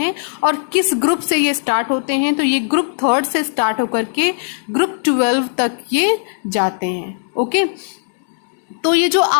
और किस ग्रुप से ये स्टार्ट होते हैं? तो ये ग्रुप 3 से स्टार्ट होकर के ग्रुप 12 तक ये जाते हैं. ओके, तो ये जो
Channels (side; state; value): right; silent; digital silence